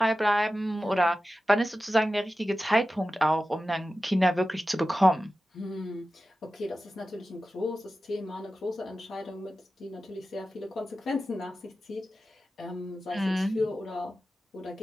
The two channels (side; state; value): both; normal; correlation 0.94